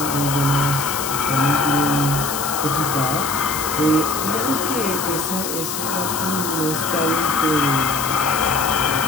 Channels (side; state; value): left; noise; hiss, 4 dB below the sound